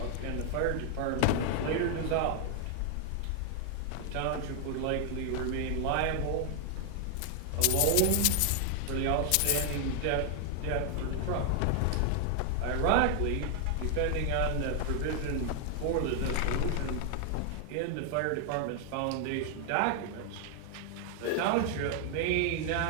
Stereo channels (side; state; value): both; different; correlation 0.00